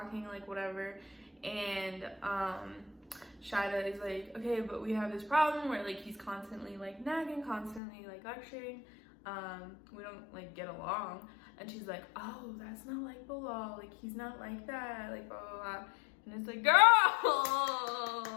like, whatever. And, Shida is like, okay, but we have this problem where, like, he's constantly, like, nagging, constantly, like, lecturing. We don't, like, get along. And she's like, oh, that's not like Bilal. Like, he's not like that. Like, blah, blah, blah. And it's like,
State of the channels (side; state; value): right; drops out; at 7.8 s